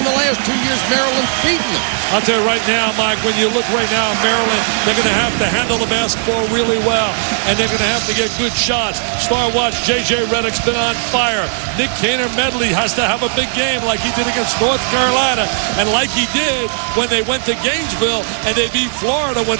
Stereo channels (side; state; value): left; silent; digital silence